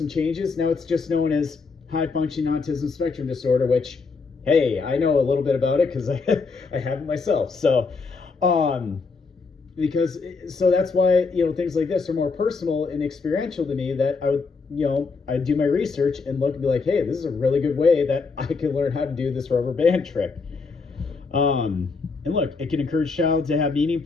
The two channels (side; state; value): right; quieter; 4.5 dB